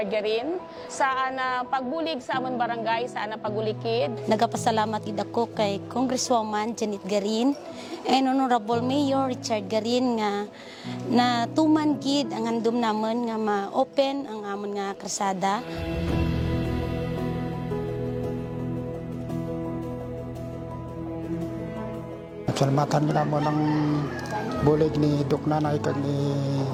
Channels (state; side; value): identical; both; correlation 1.00